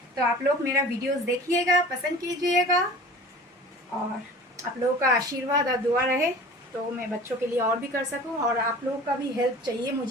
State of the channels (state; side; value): normal; both; correlation 0.41